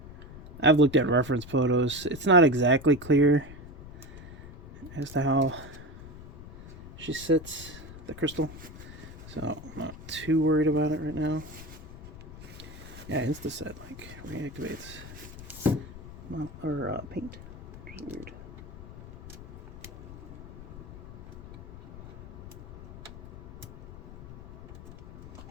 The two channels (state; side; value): noise; left; rumble, 15 dB below the sound